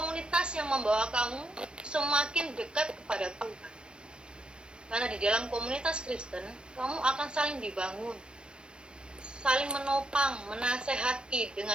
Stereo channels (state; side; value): late; left; 0.051 ms